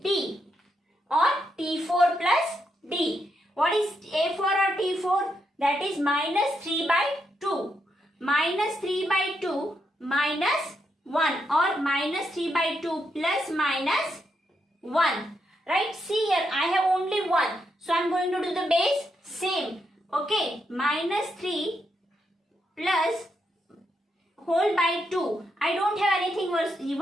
D or T4 plus D. What is A4 or T4? that is minus 3 by 2. Minus 3 by 2 minus 1 or minus 3 by 2 plus minus 1. Right? See here, I have only 1. So I am going to do the base same. Okay. Minus 3 plus whole by 2. I don't have anything was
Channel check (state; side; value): normal; both; correlation 0.81